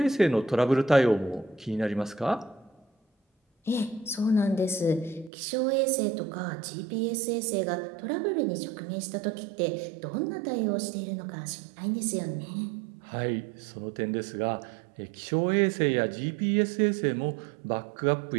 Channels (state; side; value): drops out; left; at 5.3 s